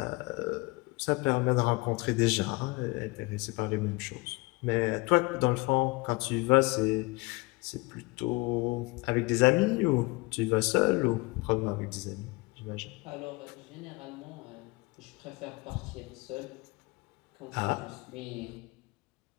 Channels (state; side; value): quieter; right; 24.3 dB